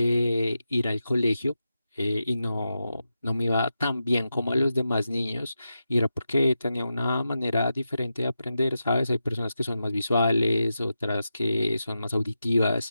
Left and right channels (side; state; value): both; inverted; correlation -0.89